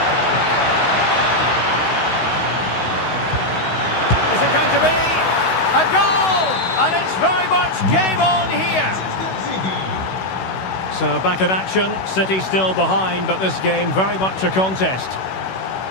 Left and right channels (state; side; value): late; right; 16 ms